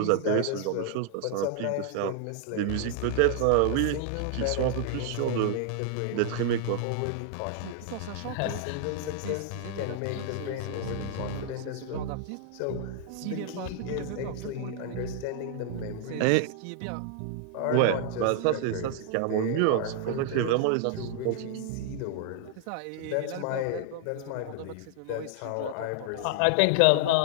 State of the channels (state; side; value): different; both; correlation 0.00